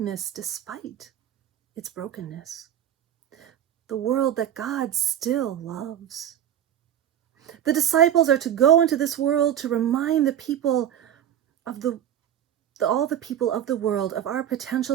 despite its brokenness. The world that God still loves. The disciples are to go into this world to remind the people of all the people of the world of our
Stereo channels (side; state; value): left; quieter; 10.2 dB